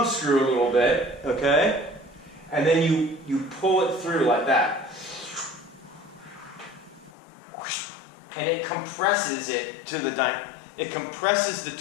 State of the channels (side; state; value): right; drops out; at 7.1 s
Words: screw a little bit, okay? And then you pull it through like that. And it compresses it to it compresses the